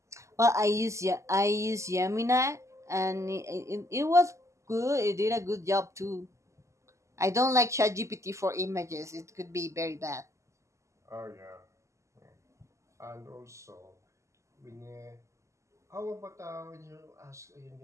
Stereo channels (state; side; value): late; left; 0.14 ms